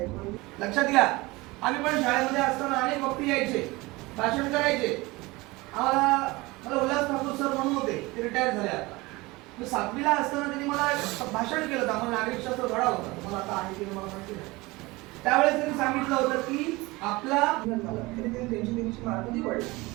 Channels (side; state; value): left; quieter; 22.2 dB